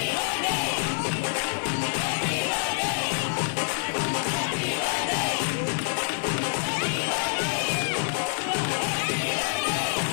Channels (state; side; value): silent; right; digital silence